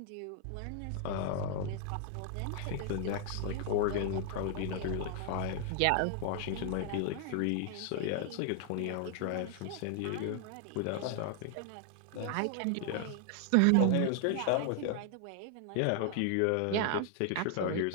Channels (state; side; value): different; both; correlation 0.00